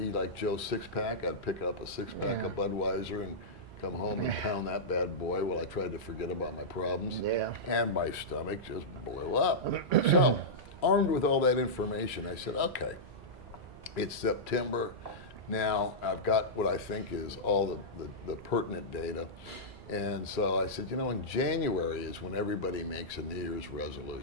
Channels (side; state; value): right; noise; hum, 20 dB below the sound